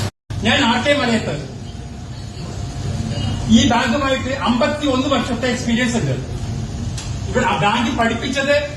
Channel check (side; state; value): both; identical; correlation 1.00